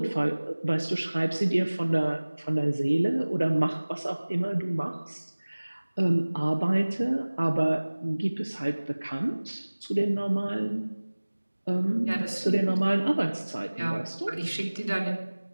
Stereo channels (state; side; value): inverted; both; correlation -1.00